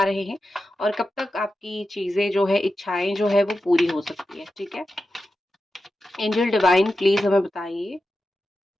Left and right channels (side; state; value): both; normal; correlation 0.91